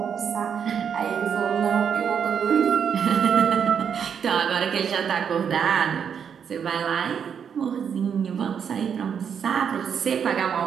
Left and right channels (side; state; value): left; quieter; 7.5 dB